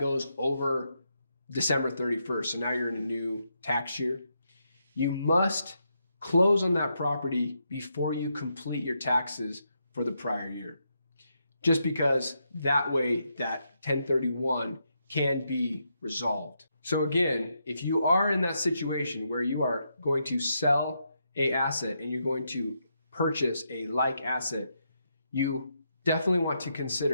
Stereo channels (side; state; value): both; inverted; correlation -0.81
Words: over December 31st. So now you're in a new tax year. You must close on that property before you complete your taxes for the prior year. Just because that way that 1031 can be resolved. So again, if you are in that situation where you are going to sell an asset and you're going to purchase a like asset, you definitely want to